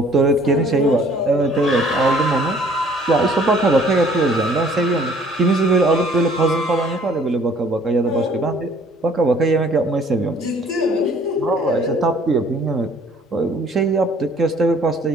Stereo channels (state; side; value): normal; both; correlation 0.56